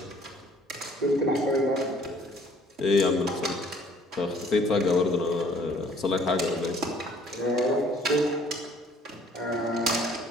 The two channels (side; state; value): both; normal; correlation 0.58